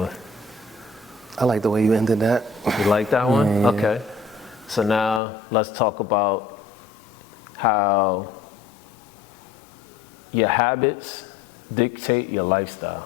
I like the way you ended that. You like that one? Yeah. Okay. So now let's talk about how your habits dictate your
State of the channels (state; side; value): drops out; right; at 5.2 s